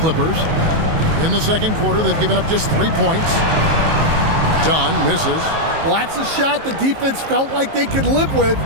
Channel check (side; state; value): left; late; 19 ms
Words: In the second quarter, they've given up just 3 points. Dunn misses. Well, that's a shot the defense felt like they could live with,